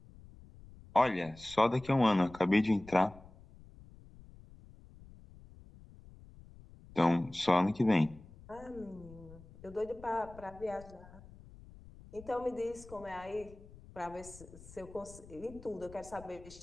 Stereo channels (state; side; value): noise; left; rumble, 20 dB below the sound